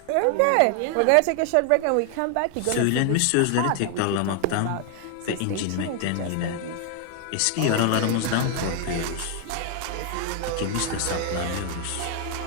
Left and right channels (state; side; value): different; both; correlation 0.00